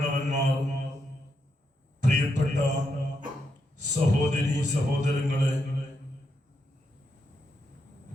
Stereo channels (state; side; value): normal; both; correlation 0.82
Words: പ്രിയപ്പെട്ട സഹോദരി സഹോദരങ്ങളെ,